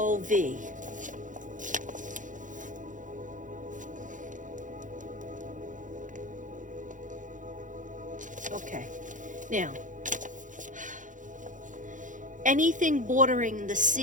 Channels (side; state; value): left; late; 0.37 ms